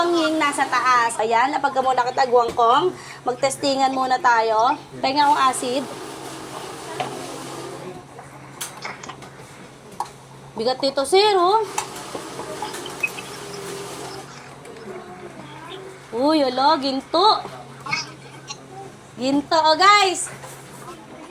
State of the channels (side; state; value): both; identical; correlation 1.00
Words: nasa taas. Ayan, napagka muna kita Guangkong. Magtestingan muna tayo. Pahinga akong acid. Bigat nito, sir, oh. Uy, alo, ginto. Ginto, oh guys.